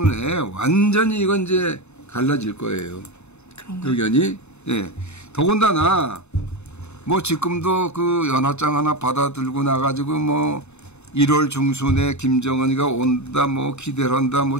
내에 완전히 이건 이제 갈라질 거예요. 그런가요? 의견이. 예. 더군다나 뭐 지금도 그 연화장 하나 받아들고 나가지고 뭐 1월 중순에 김정은이가 온다 뭐 기대를 한다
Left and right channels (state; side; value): late; right; 0.82 ms